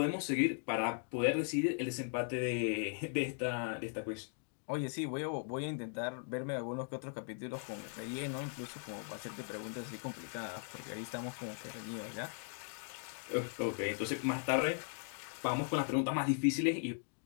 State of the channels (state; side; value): silent; right; 52 dB below the other